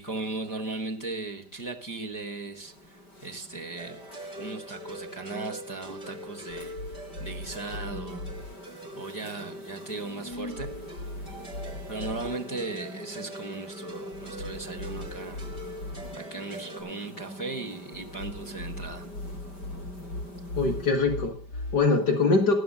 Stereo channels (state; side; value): late; right; 5.1 ms